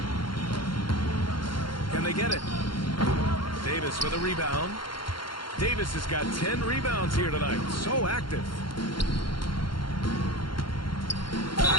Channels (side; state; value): right; late; 0.72 ms